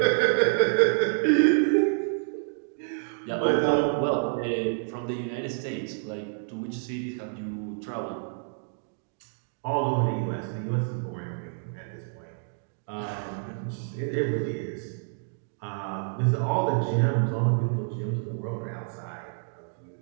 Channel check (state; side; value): silent; left; digital silence